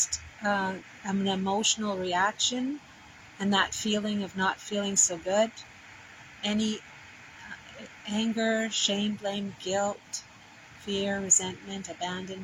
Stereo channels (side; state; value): both; identical; correlation 1.00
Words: an emotional reaction and that feeling of not feeling so good, any anger, shame, blame, guilt, fear, resentment,